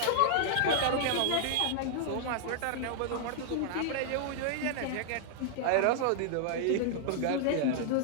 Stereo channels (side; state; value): both; different; correlation -0.01